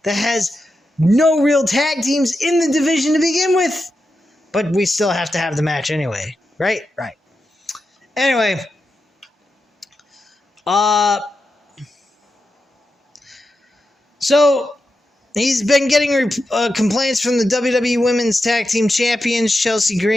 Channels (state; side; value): normal; both; correlation 0.88